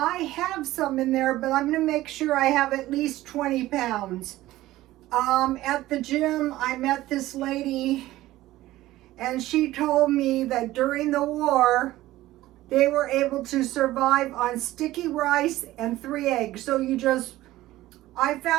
have some in there, but I'm going to make sure I have at least 20 pounds. At the gym, I met this lady, and she told me that during the war, they were able to survive on sticky rice and 3 eggs. So I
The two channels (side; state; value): left; quieter; 16.2 dB